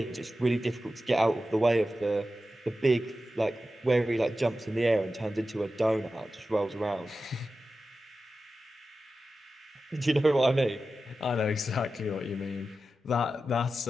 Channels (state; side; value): normal; both; correlation 0.93